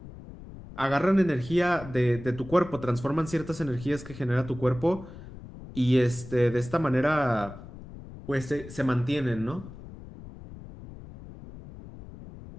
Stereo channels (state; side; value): noise; left; rumble, 15 dB below the sound